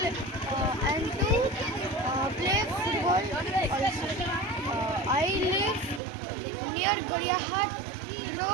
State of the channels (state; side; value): drops out; left; at 6.0 s